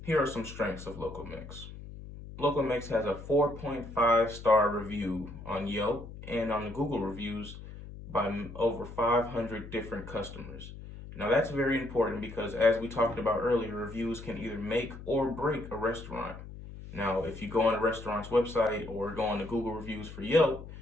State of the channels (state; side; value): noise; left; hum, 13 dB below the sound